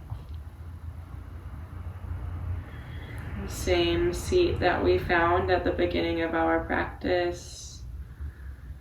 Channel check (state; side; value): identical; both; correlation 1.00